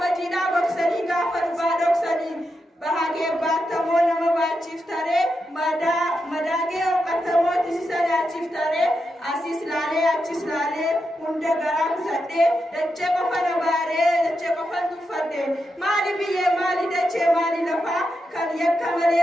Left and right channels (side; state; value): both; normal; correlation 0.86